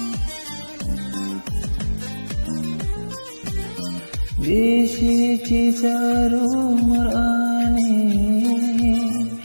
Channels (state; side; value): inverted; both; correlation -1.00